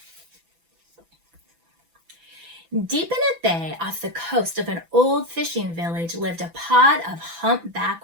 Deep in a bay off the coast of an old fishing village lived a pod of humpback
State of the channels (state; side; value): late; left; 6.0 ms